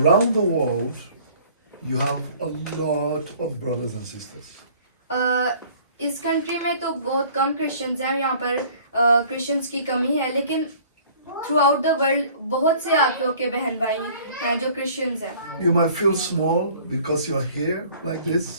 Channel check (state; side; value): inverted; both; correlation -0.52